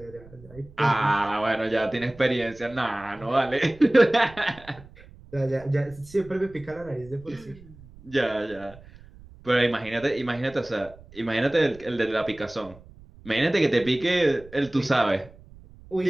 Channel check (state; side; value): noise; right; rumble, 22 dB below the sound